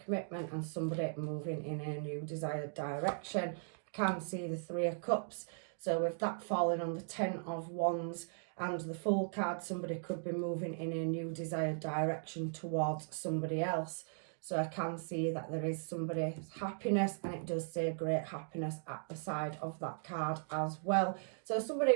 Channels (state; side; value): silent; left; digital silence